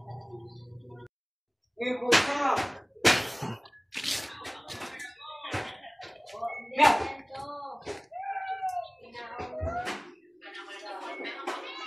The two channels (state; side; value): identical; both; correlation 1.00